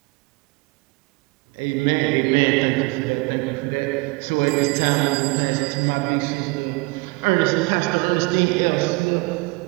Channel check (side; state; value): left; quieter; 27.7 dB